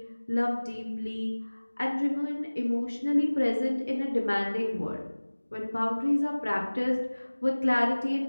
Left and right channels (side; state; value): both; inverted; correlation -1.00